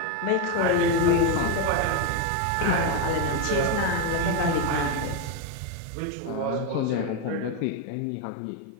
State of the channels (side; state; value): both; different; correlation 0.03